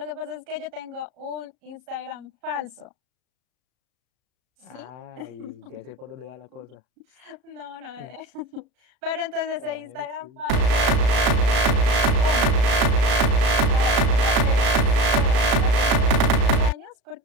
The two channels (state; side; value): late; left; 35 ms